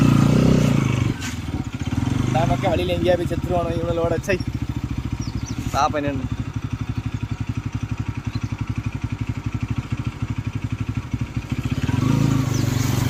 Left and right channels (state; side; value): identical; both; correlation 1.00